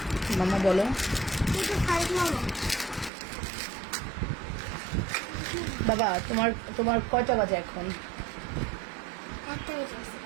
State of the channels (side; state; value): left; drops out; at 3.1 s